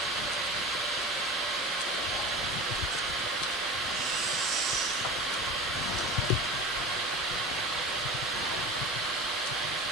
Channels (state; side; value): normal; both; correlation 0.33